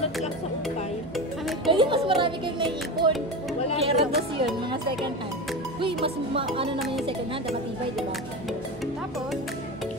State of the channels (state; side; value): normal; both; correlation 0.24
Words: lang sa upay. Kami po, Kasi mas marami kayong naiipon. Wala Kaya yun. rados yun, mga second hand. Uy, mas ano naman yung second hand, matibay, di ba? tapos,